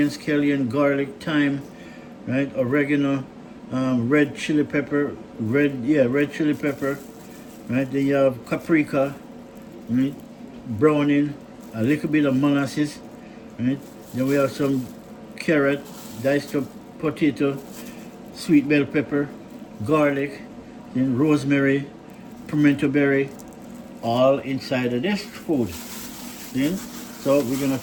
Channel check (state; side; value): identical; both; correlation 1.00